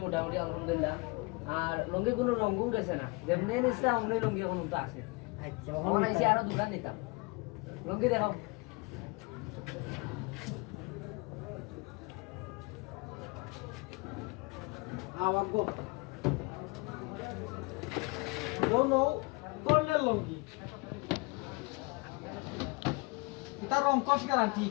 মোটামুটি আলহামদুলিল্লাহ আর লঙ্গি কোনো রঙও গেছে না যেমনি নিছিলাম অমনি লঙ্গি এখন তো আছে আচ্ছা এখন আইছি আরো দোকান নিতাম লঙ্গি দেখাও আওয়াগো নো কর্নেল লঙ্গি এটা রংকশ গ্যারান্টি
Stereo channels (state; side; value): quieter; right; 27.5 dB